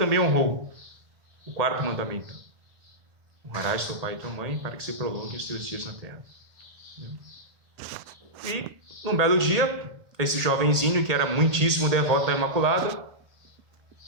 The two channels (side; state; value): left; late; 1.7 ms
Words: honrou, o 4º mandamento: honrarás teu pai e tua mãe para que se prolonguem os teus dias na terra. E, num belo dia, esse jovenzinho, que era muitíssimo devoto da Imaculada,